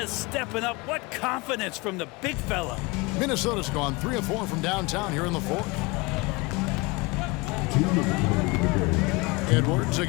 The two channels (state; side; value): quieter; right; 25.0 dB